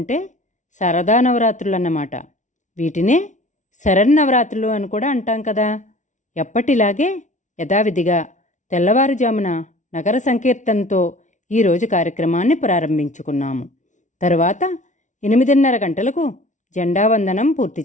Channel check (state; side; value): late; right; 0.36 ms